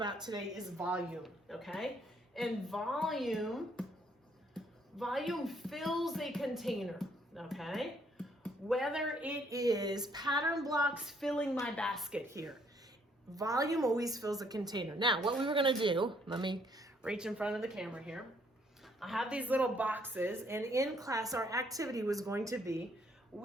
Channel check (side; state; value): both; normal; correlation 0.67